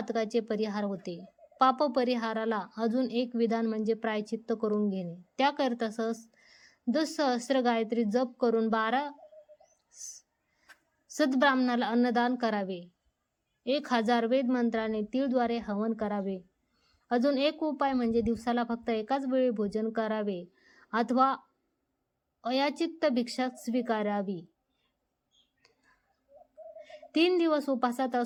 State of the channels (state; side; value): identical; both; correlation 1.00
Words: परिहार होते. पाप परिहाराला अजून एक विधान म्हणजे प्रायचित्त करून घेणे. त्याकरिता सहस्र गायत्री जप करून 12 सद्ब्राह्मणाला अन्नदान करावे. 1000 वेद मंत्राने तीळद्वारे हवन करावे. अजून एक उपाय म्हणजे दिवसाला फक्त एकाच वेळी भोजन करावे अथवा अयाचित भिक्षा स्वीकारावी. 3 दिवस उपासात